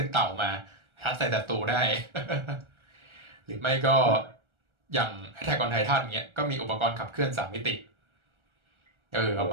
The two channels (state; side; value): late; left; 1.4 ms